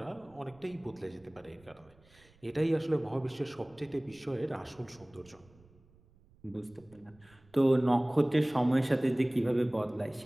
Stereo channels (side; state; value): right; noise; rumble, 28 dB below the sound